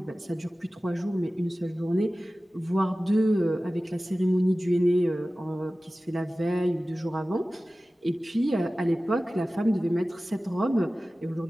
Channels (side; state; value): both; normal; correlation 0.96